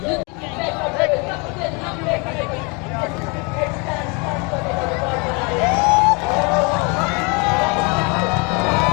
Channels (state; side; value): quieter; right; 30.7 dB